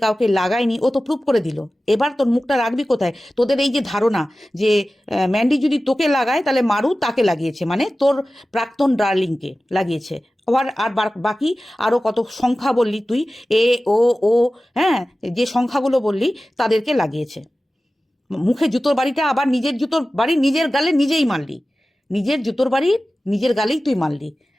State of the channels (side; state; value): both; normal; correlation 0.96